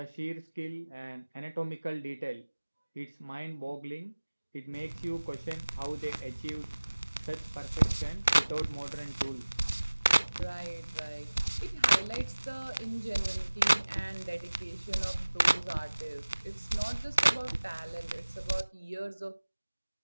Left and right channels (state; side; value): inverted; both; correlation -1.00